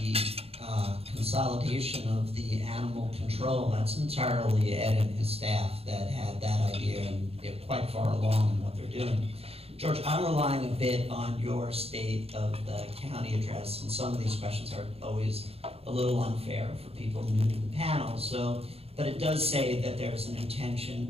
consolidation of the animal control, that's entirely Ed and his staff that had that idea, and they're quite far along in what they're doing. George, I'm relying a bit on your state of the county address, and some of these questions are always a little unfair for people new to the panel, but it does say that there's an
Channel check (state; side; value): late; left; 0.29 ms